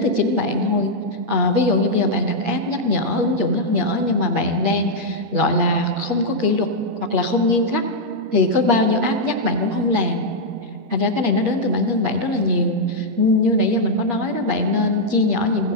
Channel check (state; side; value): late; left; 8.5 ms